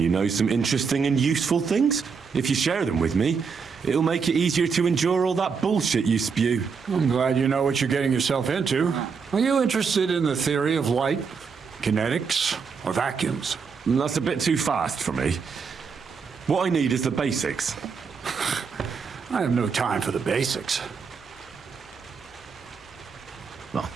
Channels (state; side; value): quieter; left; 5.7 dB